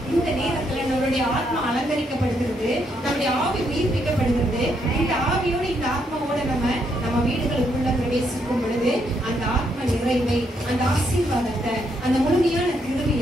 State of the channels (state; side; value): normal; both; correlation 0.76